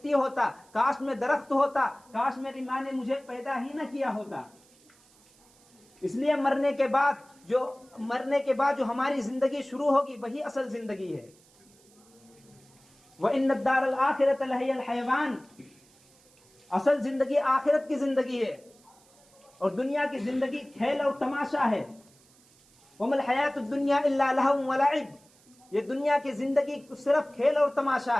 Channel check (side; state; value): right; noise; hiss, 29 dB below the sound